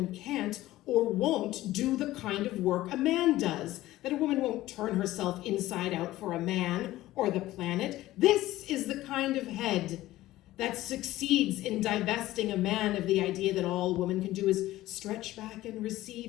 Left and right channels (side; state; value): right; quieter; 16.1 dB